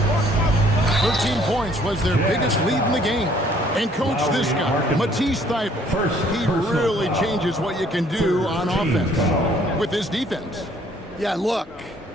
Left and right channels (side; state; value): both; normal; correlation 0.61